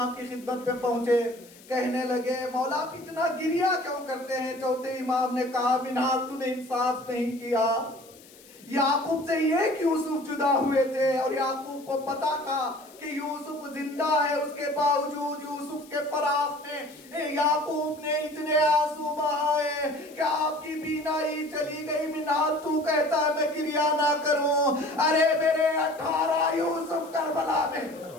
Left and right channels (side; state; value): left; noise; hiss, 23 dB below the sound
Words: کی خدمت پہ پہنچے, کہنے لگے مولا آپ اتنا گریا کیوں کرتے ہیں؟ چوتھے امام نے کہا, منہال تو نے انصاف نہیں کیا. یعقوب سے یہ کہ یوسف جدا ہوئے تھے اور یعقوب کو پتا تھا کہ یوسف زندہ ہے, اس کے باوجود یوسف کے فراق میں یعقوب نے اتنے آنسو بہائے کہ آپ کی بینائی چلی گئی. منہال تو کہتا ہے میں گریا نہ کروں, ارے میرے 18 یوسف کربلا میں.